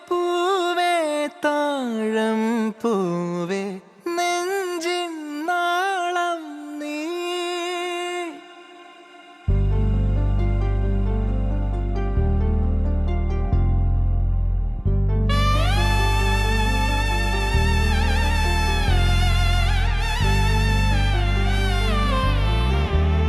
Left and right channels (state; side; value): identical; both; correlation 1.00